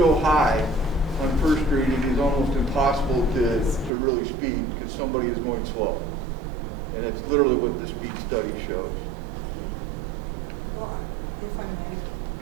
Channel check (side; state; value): left; drops out; at 3.9 s